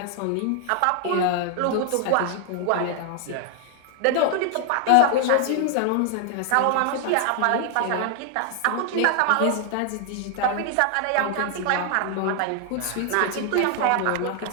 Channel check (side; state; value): both; different; correlation 0.00